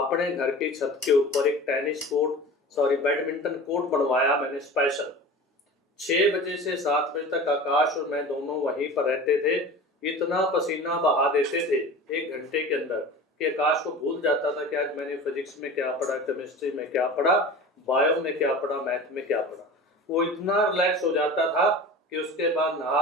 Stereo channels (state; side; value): normal; both; correlation 0.36